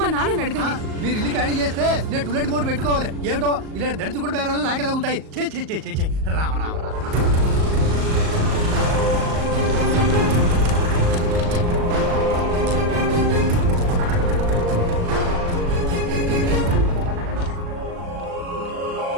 నాన్నని అడగండి. మీరు ఇల్లు ఖాళీ చేస్తే నేను టూలెట్ బోర్డు పెట్టుకోవాలి. ఏమిటో ఇలా దరిద్ర కూడా బేరాలు నాకే తగులుతాయి. చే రామ రామ రామ.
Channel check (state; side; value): late; left; 38 ms